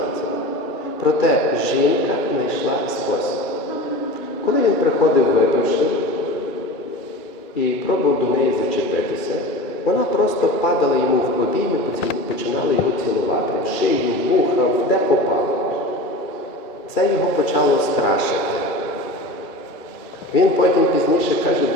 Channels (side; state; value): right; late; 2.3 ms